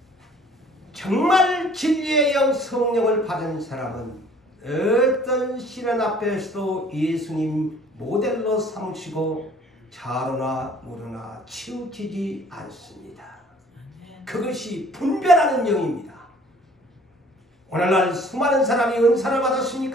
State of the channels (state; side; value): normal; both; correlation 0.54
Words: 정말 진리의 영 성령을 받은 사람은 어떤 시련 앞에서도 예수님 모델로 삼으시고 자로나 무로나 치우치지 않습니다. 그것이 분별하는 영입니다. 오늘날 수많은 사람이 은사를